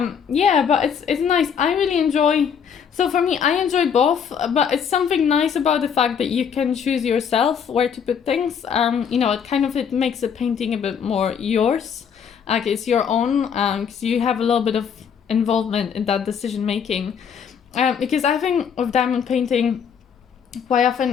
Yeah, but it's nice. I really enjoy. So for me, I enjoy both, but it's something nice about the fact that you can choose yourself where to put things. You know, it makes a painting a bit more yours. Like it's your own, because you have a little bit of involvement in that decision making. Because I think of diamond painting, quite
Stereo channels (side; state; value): right; quieter; 7.3 dB